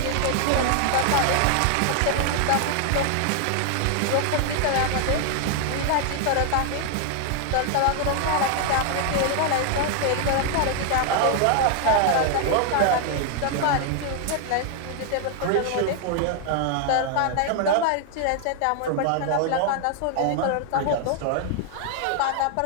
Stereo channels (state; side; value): different; both; correlation 0.00